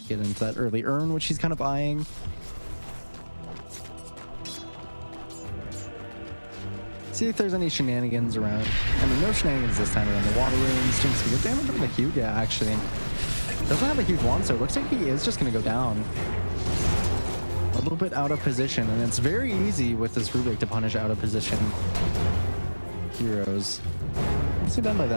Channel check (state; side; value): inverted; both; correlation -1.00